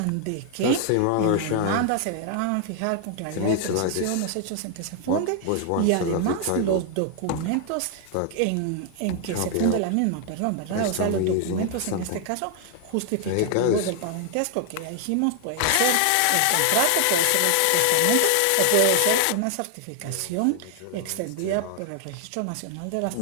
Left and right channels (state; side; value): different; both; correlation 0.00